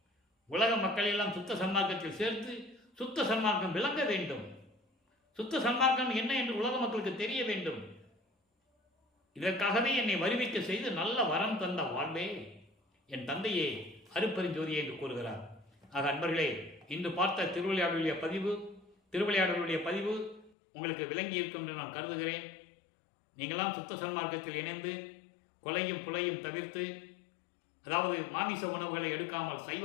உலக மக்களை எல்லாம் சுத்த சன்மார்க்கத்தில் சேர்த்து சுத்த சன்மார்க்கம் விளங்க வேண்டும். சுத்த சன்மார்க்கம் என்ன என்று உலக மக்களுக்கு தெரிய வேண்டும். இதற்காகவே என்னை வருவிக்க செய்து நல்ல வரம் தந்த வாழ்வே என் தந்தையே அருப்பெருஞ்சோதியே என்று கூறுகிறார். ஆக அன்பர்களே, இன்று பார்த்த திருவிளையாடலுடைய பதிவு உங்களுக்கு விளங்கி இருக்கும் என்று நான் கருதுகிறேன். நீங்களாம் சுத்த சன்மார்க்கத்தில் இணைந்து கொலையும் புலையும் தவிர்த்து, அதாவது மாமிச உணவுகளை எடுக்காமல் சைவ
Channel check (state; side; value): drops out; right; at 20.5 s